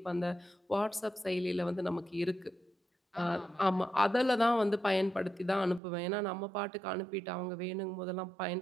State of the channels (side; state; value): left; drops out; at 5.8 s